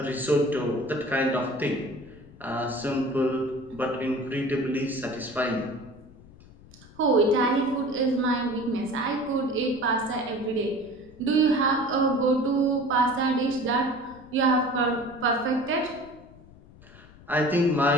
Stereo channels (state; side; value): noise; left; rumble, 22 dB below the sound